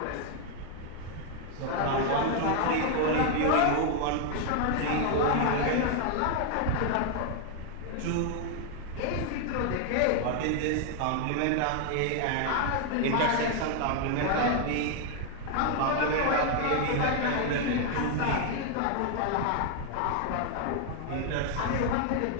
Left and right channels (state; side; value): different; both; correlation 0.00